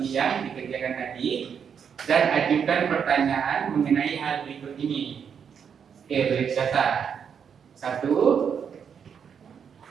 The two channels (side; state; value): left; quieter; 7.3 dB